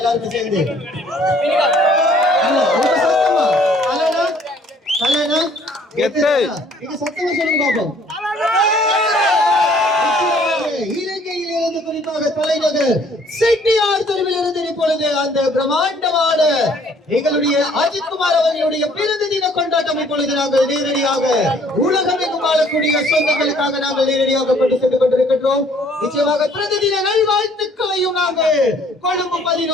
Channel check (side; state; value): both; normal; correlation 0.59